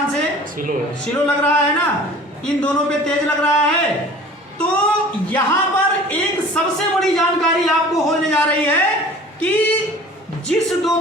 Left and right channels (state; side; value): normal; both; correlation 0.45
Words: से, स्लो लग रहा है ना, इन दोनों पे तेज लग रहा है। तो यहां पर एक सबसे बड़ी जानकारी आपको होने जा रही है कि जिस दो